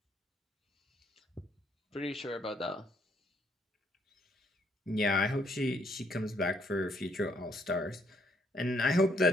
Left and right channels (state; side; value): normal; both; correlation 0.69